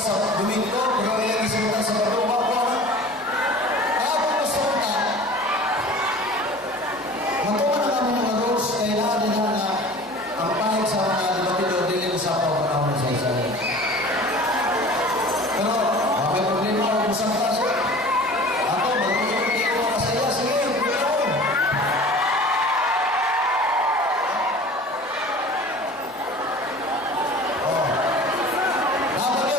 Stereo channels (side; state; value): both; normal; correlation 0.42